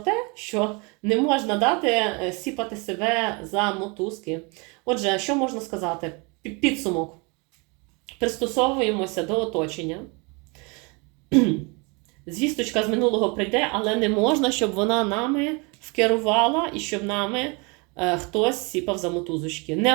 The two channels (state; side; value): quieter; left; 30.2 dB